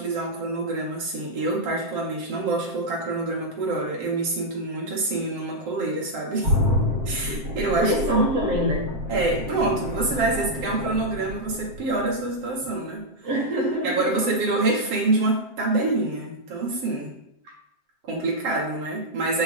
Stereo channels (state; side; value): late; left; 7.6 ms